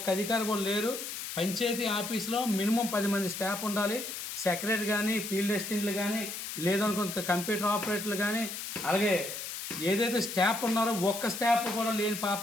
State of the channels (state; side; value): noise; left; hiss, 7 dB below the sound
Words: అధికారి కూడా లేరు. పంచాయతీ ఆఫీస్లో మినిమం 10 మంది స్టాఫ్ ఉండాలి. సెక్రటరీ కానీ, ఫీల్డ్ అసిస్టెంట్లు కానీ, లేదనుకో కంప్యూటర్ ఆపరేటర్లు కానీ, అలాగే ఏదైతే స్టాఫ్ ఉన్నారో ఒక్క స్టాఫ్ కూడా లేని